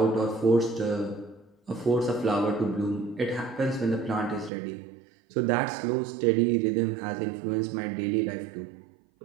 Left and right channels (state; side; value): drops out; left; at 4.5 s